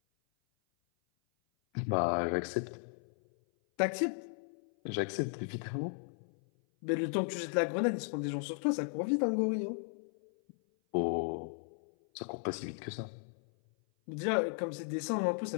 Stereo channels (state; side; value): silent; right; 54 dB below the other